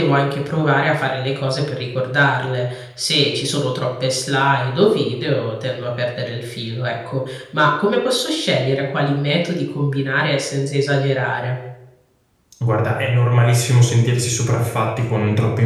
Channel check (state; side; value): identical; both; correlation 1.00